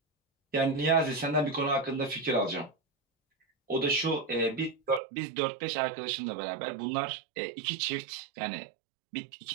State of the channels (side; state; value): left; drops out; at 5.0 s